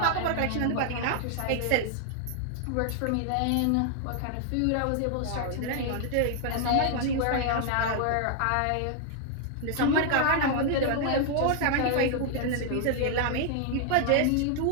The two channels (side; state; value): both; different; correlation 0.00